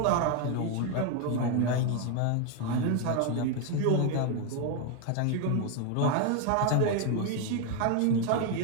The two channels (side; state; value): both; different; correlation 0.01